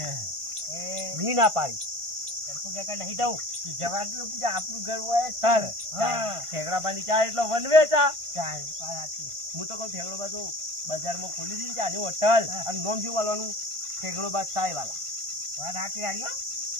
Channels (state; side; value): late; left; 1.5 ms